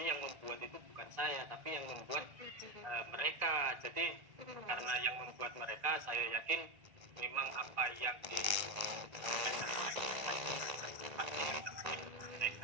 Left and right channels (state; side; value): late; left; 1.9 ms